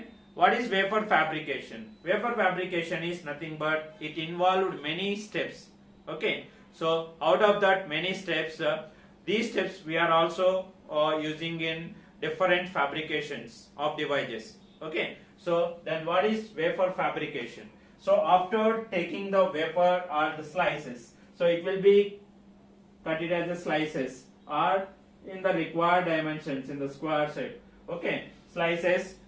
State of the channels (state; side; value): identical; both; correlation 1.00